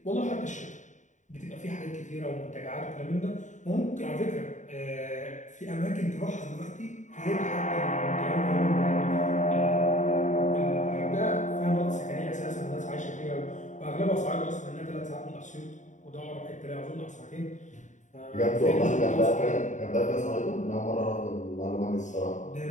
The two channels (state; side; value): late; right; 0.36 ms